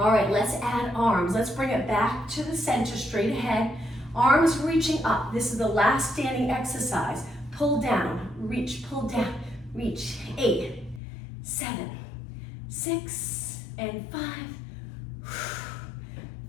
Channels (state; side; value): drops out; right; at 11.0 s